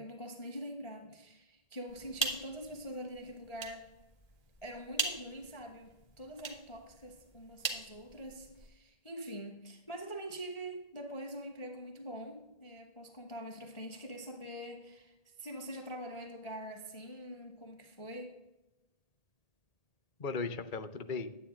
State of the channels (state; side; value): late; right; 1.8 ms